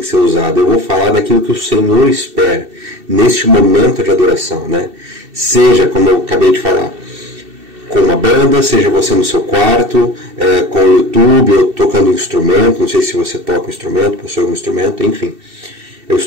ser usada, eu vou falar daquilo que o Senhor espera neste momento de adoração, né? Seja, como eu acabei de falar, com uma banda, seja você no seu quarto, com o YouTube, ou tocando um instrumento, não sei se você toca um instrumento, possui um instrumento, enfim. Eu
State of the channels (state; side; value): late; left; 2.7 ms